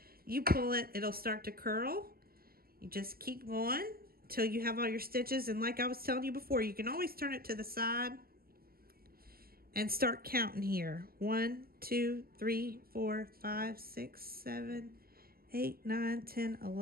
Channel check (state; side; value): late; left; 0.44 ms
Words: you pull it, it'll start to curl. You just keep going until you have all your stitches. And like I was telling you before, you can always turn it to the side and start counting here. 1, 2, 3, 4, 5, 6, 7, 8, 9, 10,